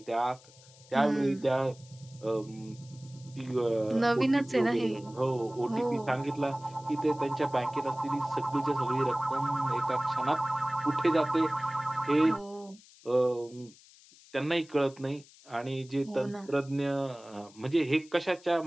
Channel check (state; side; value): noise; left; hiss, 24 dB below the sound